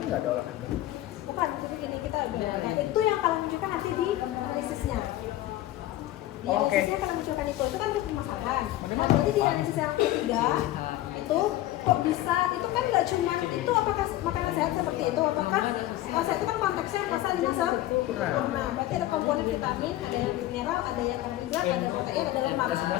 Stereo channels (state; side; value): quieter; right; 15.2 dB